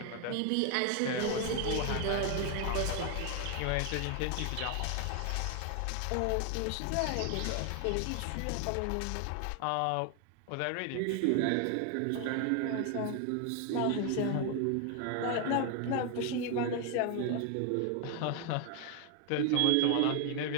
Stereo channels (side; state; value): both; different; correlation 0.00